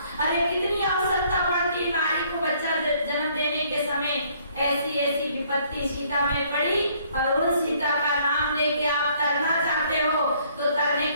अरे कितनी आवश्यकता पड़ती नारी को बच्चा जन्म देने के समय। ऐसी विपत्ति सीता में पड़ी और उन सीता का नाम लेके आप तरना चाहते हो तो तरने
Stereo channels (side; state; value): both; inverted; correlation -0.63